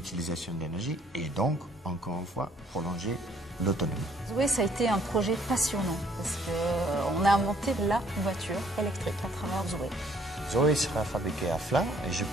d'énergie et donc, encore une fois, prolonger l'autonomie. Zoé, ça a été un projet passionnant parce qu'on a inventé la voiture électrique à travers Zoé. Zoé sera fabriquée à Flins et je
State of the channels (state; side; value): normal; both; correlation 0.62